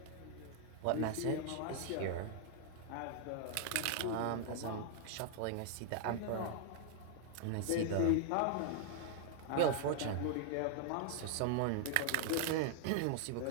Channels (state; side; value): different; both; correlation 0.00